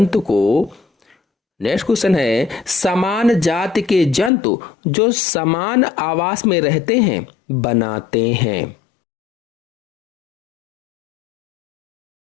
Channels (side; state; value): right; drops out; at 4.3 s